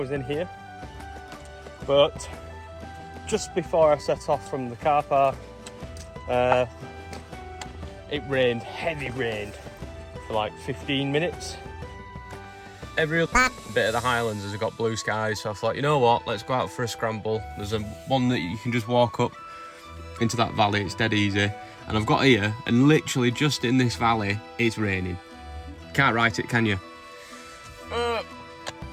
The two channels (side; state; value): both; identical; correlation 1.00